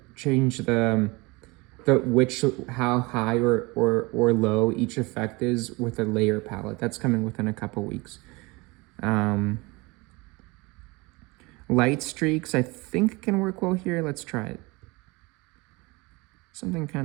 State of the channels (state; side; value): quieter; left; 24.9 dB